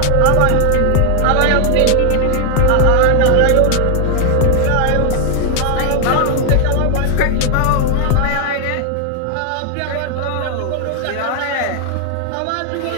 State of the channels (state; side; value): different; both; correlation 0.00